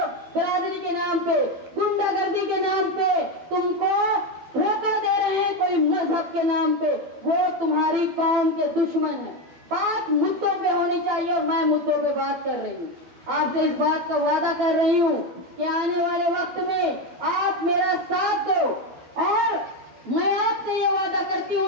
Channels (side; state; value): left; late; 12 ms